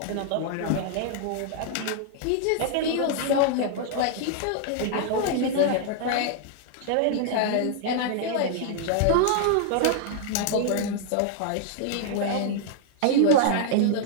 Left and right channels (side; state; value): both; different; correlation 0.00